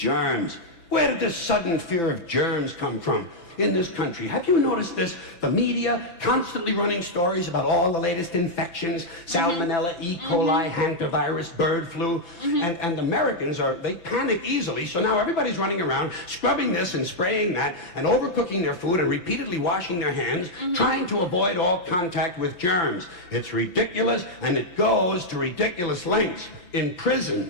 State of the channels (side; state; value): right; late; 5.9 ms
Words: Where did this sudden fear of germs come from? In this country. Have you noticed this? The media constantly running stories about all the latest infections, salmonella, E. coli, hantavirus, bird flu, and Americans they panic easily, so now everybody's running around scrubbing this and spraying that and overcooking their food and repeatedly washing their hands, trying to avoid all contact with germs. It's ridiculous, and it goes to ridiculous lengths. In